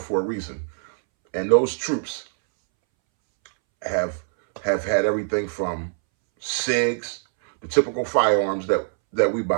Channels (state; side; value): silent; left; 63 dB below the other